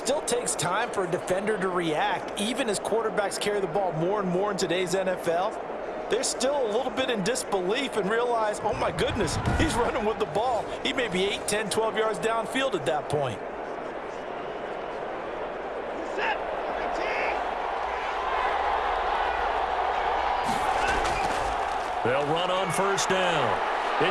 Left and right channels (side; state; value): both; identical; correlation 1.00